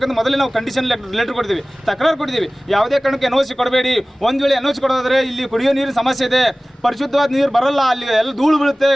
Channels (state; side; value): normal; both; correlation 0.98